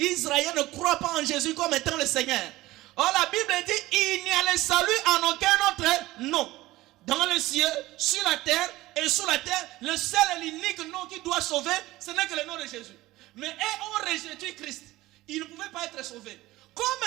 ne croit pas en Jésus comme étant le Seigneur. Or, la Bible dit, il n'y a le salut en aucun autre nom. Dans le ciel, sur la terre et sous la terre, le seul et l'unique nom qui doit sauver, ce n'est que le nom de Jésus. Mais eux ont rejeté Christ. Ils ne pouvaient pas être sauvés.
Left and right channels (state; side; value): quieter; left; 17.9 dB